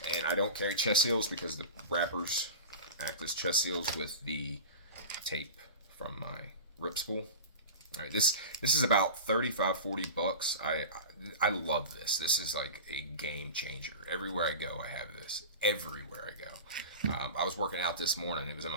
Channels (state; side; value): inverted; both; correlation -0.31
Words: And I don't carry chest seals because the wrappers act as chest seals with the tape from my rip spool. All right, this is about $35-40. I love this. This is like a game changer. Everywhere I go, I have this. Everywhere I go. I was working out this morning. It was in